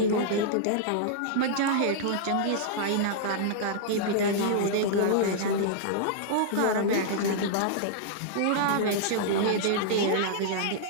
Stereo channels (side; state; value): both; different; correlation -0.02